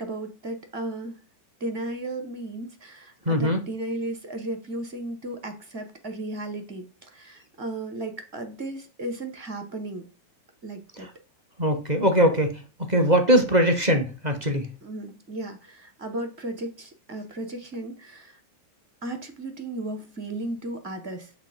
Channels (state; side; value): late; left; 2.0 ms